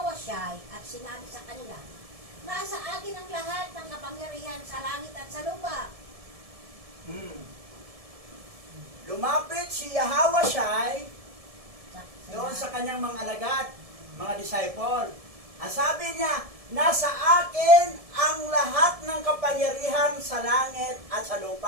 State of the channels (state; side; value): late; left; 1.7 ms